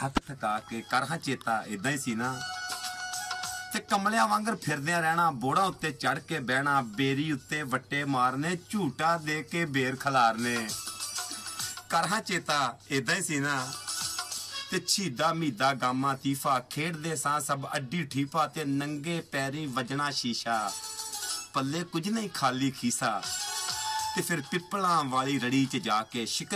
ਥਕਾ ਕੇ। ਕਰ ਹਾਂ ਚੇਤਾ ਇਦਾਂ ਹੀ ਸੀ ਨਾ। ਤੇ ਕਮਲਿਆਂ ਵਾਂਗਰ ਫਿਰਦਿਆਂ ਰਹਿਣਾ, ਬੋੜਾਂ ਉੱਤੇ ਚੜ ਕੇ ਬਹਿਣਾ, ਬੇਰੀ ਉੱਤੇ ਵੱਟੇ ਮਾਰਨੇ, ਝੂਟਾ ਦੇ ਕੇ ਬੇਰ ਖਲਾਰਨੇ। ਕਰ ਹਾਂ ਚੇਤਾ ਇਦਾਂ ਹੀ ਸੀ ਨਾ। ਤੇ ਛੀਦਾ ਮੀਦਾ ਗਾਮਾ ਤੀਫਾ ਖੇਡਦੇ ਸਾਂ ਸਭ ਅੱਡੀ ਠੀਫਾ ਤੇ ਨੰਗੇ ਪੈਰੀ ਵਜਣਾ ਸ਼ੀਸ਼ਾ, ਪੱਲੇ ਕੁਝ ਨਹੀਂ ਖਾਲੀ ਖੀਸਾ। ਤੇ ਫਿਰ ਪਿੱਪਲਾਂ ਵਾਲੀ ਰੜੀ 'ਚ ਜਾ ਕੇ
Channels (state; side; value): identical; both; correlation 1.00